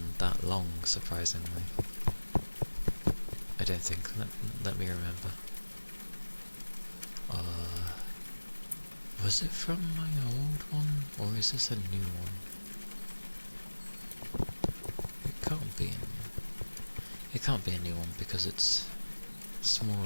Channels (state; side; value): inverted; both; correlation -1.00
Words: that long, surprisingly. I don't think. Let me remember. Was it from my old one, or is this a new one? It can't be It can't be a new one because it's